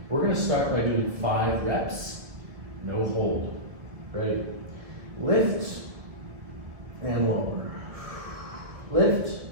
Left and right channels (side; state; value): left; late; 1.7 ms